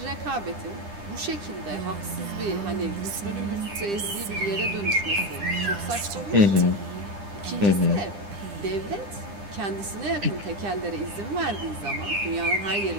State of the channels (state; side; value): late; left; 9.9 ms